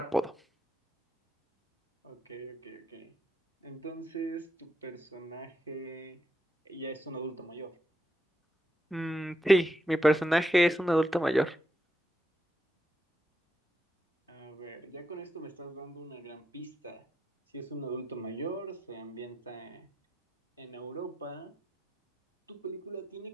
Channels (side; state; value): both; normal; correlation 0.83